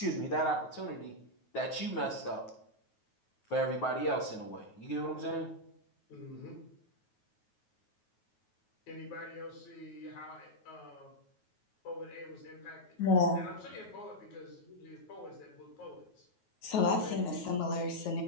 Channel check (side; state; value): right; late; 9.3 ms